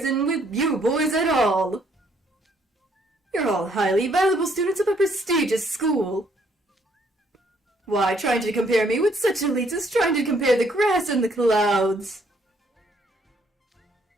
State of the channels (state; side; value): normal; both; correlation 0.67